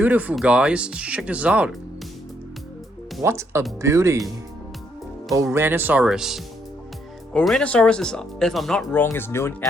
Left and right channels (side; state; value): both; normal; correlation 0.72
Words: guys. Check this out. What a beauty. Ouranosaurus. Ouranosaurus is, if I'm not wrong, is known